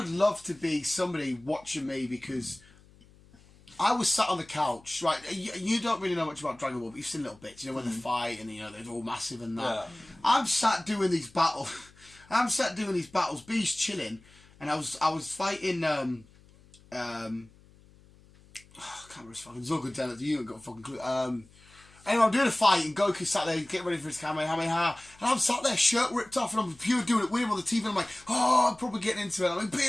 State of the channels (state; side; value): noise; left; hum, 26 dB below the sound